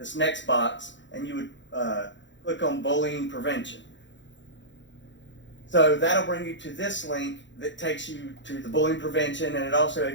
next box, and you would click on bullying prevention. So that'll bring you to this link that takes you to the bullying prevention, and it also,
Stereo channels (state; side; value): late; right; 0.54 ms